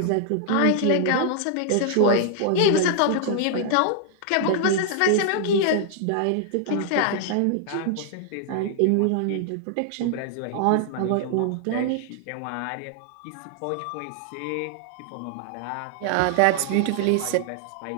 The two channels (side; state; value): both; different; correlation 0.00